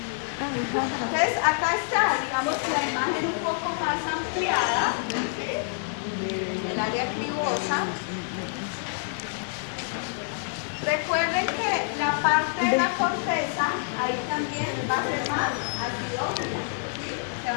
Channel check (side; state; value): right; silent; digital silence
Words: Entonces acá está, digamos, la imagen un poco más ampliada, ¿sí? El área cribosa. Recuerden que la parte de la corteza, ahí también va a ser más acidófila, ¿sí? Se